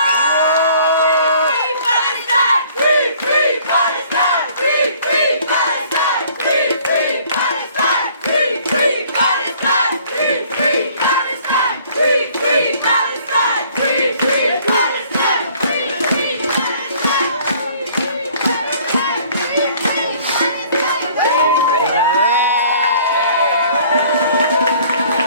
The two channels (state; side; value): inverted; both; correlation -0.56